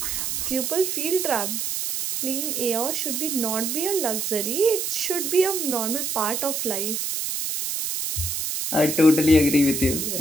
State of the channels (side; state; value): right; noise; hiss, 2 dB below the sound